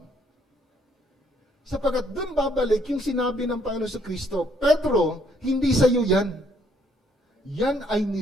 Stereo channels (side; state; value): both; normal; correlation 0.68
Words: Sapagkat dun babalik yung sinabi ng Panginoon sa Kristo, Pedro, hindi sa iyo yan. Yan ay